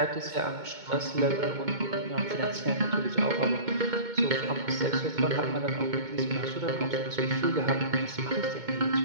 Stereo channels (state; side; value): late; left; 2.2 ms